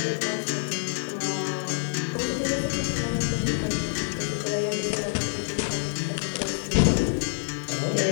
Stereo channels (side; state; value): right; silent; digital silence